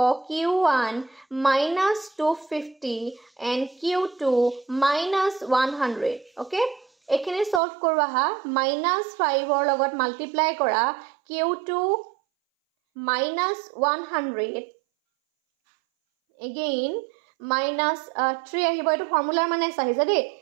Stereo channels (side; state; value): left; drops out; at 7.6 s